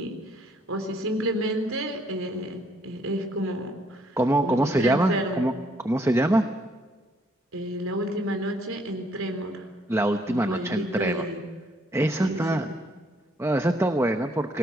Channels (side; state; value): both; normal; correlation 0.68